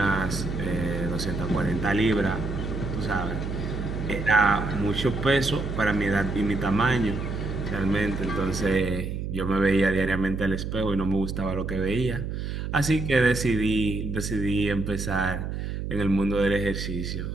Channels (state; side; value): noise; right; hum, 4 dB below the sound